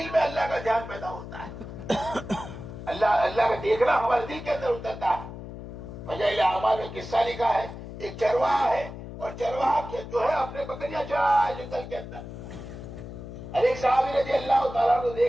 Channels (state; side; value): noise; left; hum, 11 dB below the sound